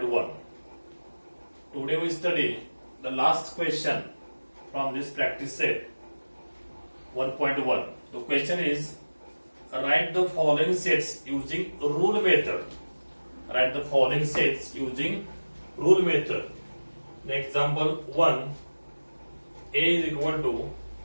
Today we study the last question from this practice set 1.1. The question is, write the following sets using rule method. Write the following sets using rule method. The example 1, A is equal to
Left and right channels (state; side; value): inverted; both; correlation -1.00